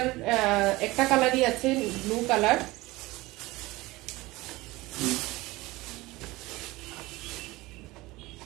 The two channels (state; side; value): quieter; left; 20.3 dB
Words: একটা কালারই আছে, ব্লু কালার।